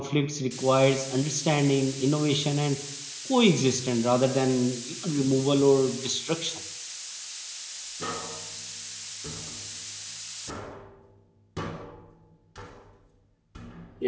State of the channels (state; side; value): identical; both; correlation 1.00